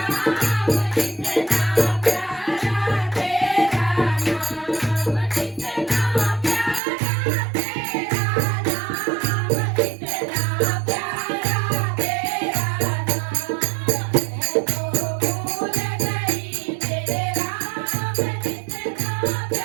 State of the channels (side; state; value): left; drops out; at 6.8 s